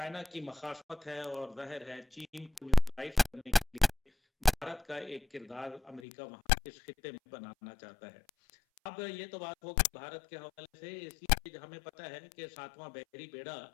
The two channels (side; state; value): right; drops out; at 6.0 s